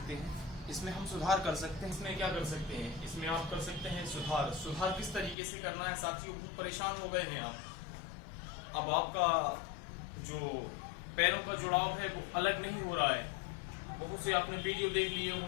हैं? इसमें हम सुधार कर सकते हैं। इसमें क्या कर सकते हैं? इसमें आप कर सकते हैं सुधार किस तरीके से करना है साथियों? बहुत परेशान हो गए हैं आप। अब आपका जो पैरों का जुड़ाव है वो अलग नहीं हो रहा है। बहुत से आपने वीडियो देख लिए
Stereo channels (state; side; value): drops out; right; at 5.4 s